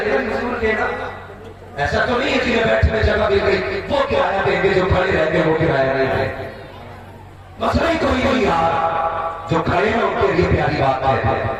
हुजूर के ना, ऐसा तो नहीं है कि बैठने जगह मिल गई वो किराया देंगे, जो खड़े रहेंगे वो किराया नहीं देंगे। मसला ही कोई नहीं यार, जो खड़े हैं उनके लिए प्यारी बात है।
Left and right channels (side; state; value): both; identical; correlation 1.00